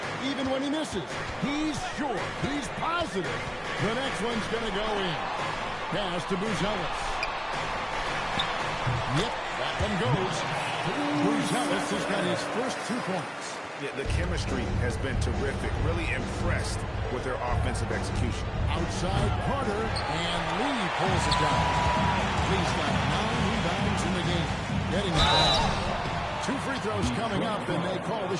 Even when he misses, he's sure, he's positive. The next one's going to go in. Pass to Buzelis. Yep, that one goes. Buzelis has got his first 2 points. Yeah, the chemistry has been terrific. Really impressed with their offensive execution. Outside Carter, and Lee pulls it down. Lee's got 9 rebounds in the game. Getting it down. 2 free throws coming up, and they call the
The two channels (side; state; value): both; identical; correlation 1.00